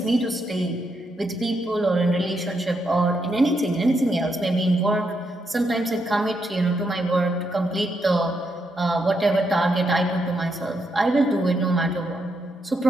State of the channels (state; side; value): normal; both; correlation 0.80